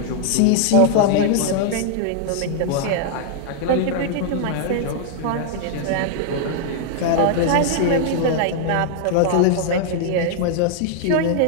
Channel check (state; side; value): different; both; correlation 0.00